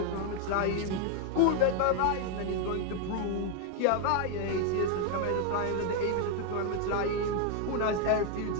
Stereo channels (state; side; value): different; both; correlation 0.00